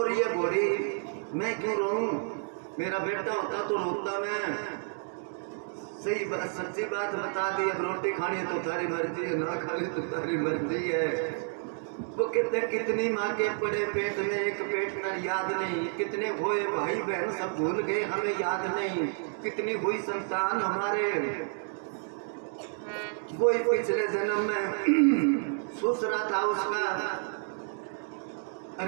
रही है बूढ़ी, मैं क्यों रोऊं? मेरा बेटा होता तो रोता मैं। सही बात, सच्ची बात बता दी, अब रोटी खानी है तो तारी मर्जी है, ना खानी तो तारी मर्जी है। वो कहते कितनी माँ के पड़े पेट में एक पेट न याद नहीं, कितने हुए भाई बहन सब भूल गए हमें याद नहीं, कितनी हुई संतान हमारे वही पिछले जन्म में ससुरा था उसका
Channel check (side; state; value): left; silent; 58 dB below the other